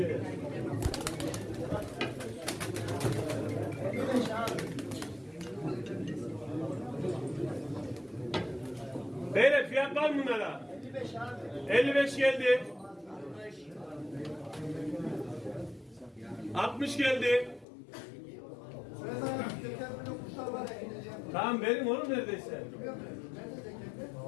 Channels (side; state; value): right; drops out; at 17.7 s